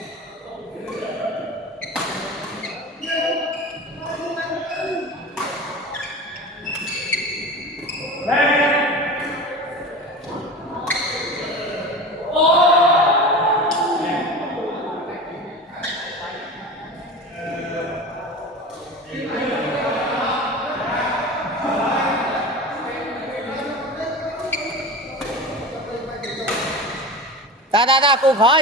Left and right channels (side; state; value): both; normal; correlation 0.32